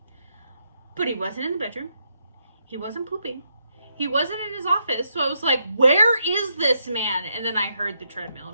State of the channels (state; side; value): inverted; both; correlation -0.79